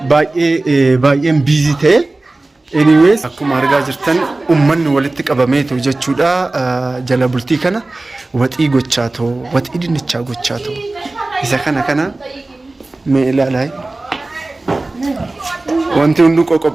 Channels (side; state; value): left; quieter; 3.0 dB